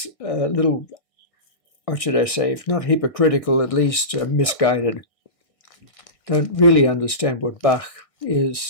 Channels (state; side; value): late; right; 1.6 ms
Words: a little, what should I say, if not hypocritical, at least misguided. Don't really understand what Bach